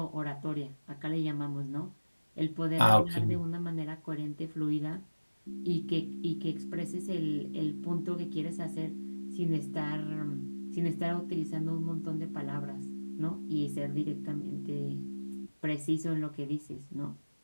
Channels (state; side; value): inverted; both; correlation -1.00